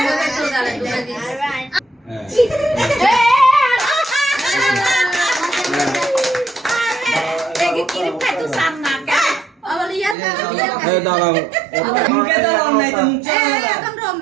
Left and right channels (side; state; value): left; drops out; at 10.2 s